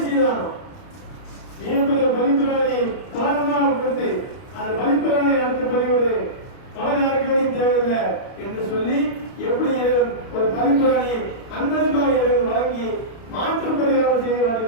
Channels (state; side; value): late; right; 31 ms